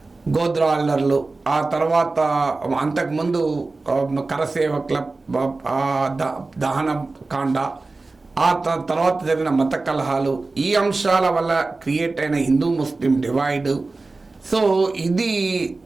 గోద్రా అల్లర్లు, ఆ తర్వాత అంతకుముందు కరసేవకుల దహన కాండ, ఆ తర్వాత జరిగిన మత కలహాలు, ఈ అంశాల వల్ల క్రియేట్ అయిన హిందూ ముస్లిం డివైడ్, సో ఇది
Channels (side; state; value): left; quieter; 3.5 dB